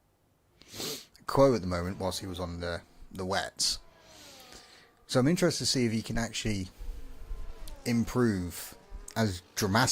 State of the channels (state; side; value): identical; both; correlation 1.00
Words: Quo at the moment whilst he was on the wets. So I'm interested to see if he can actually improve as